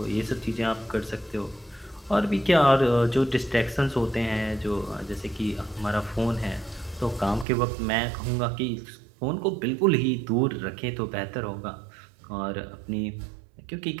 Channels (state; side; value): drops out; left; at 7.5 s